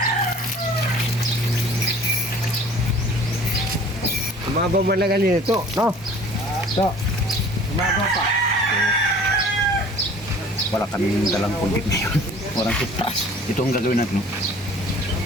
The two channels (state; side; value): normal; both; correlation 0.49